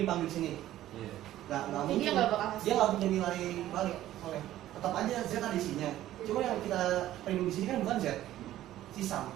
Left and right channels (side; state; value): left; quieter; 13.7 dB